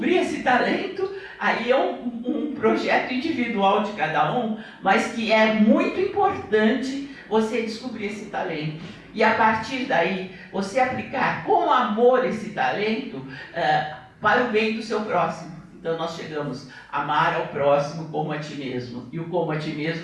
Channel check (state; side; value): identical; both; correlation 1.00